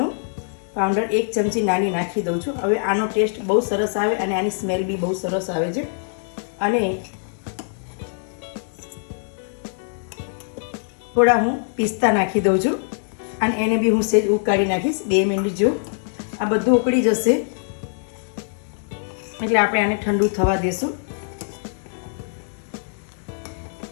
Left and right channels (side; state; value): right; silent; digital silence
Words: પાવડર 1 ચમચી નાની નાખી દઉં છું. હવે આનો ટેસ્ટ બહુ સરસ આવે અને આની સ્મેલ બી બહુ સરસ આવે છે. અને થોડા હું પિસ્તા નાખી દઉં છું અને એને બી હું સેજ ઉકાળી નાખીશ 2 મિનિટ જો. આ બધું ઉકળી જશે એટલે આપણે આને ઠંડુ થવા દેશું.